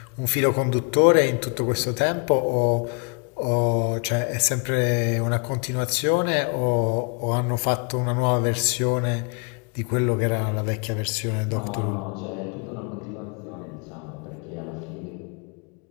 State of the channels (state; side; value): quieter; right; 35.0 dB